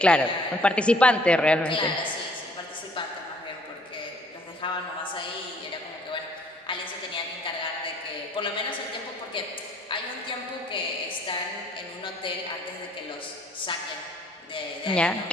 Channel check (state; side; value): normal; both; correlation 0.60